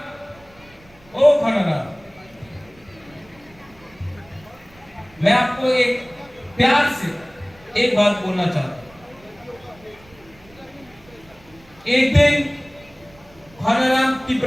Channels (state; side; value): noise; right; rumble, 26 dB below the sound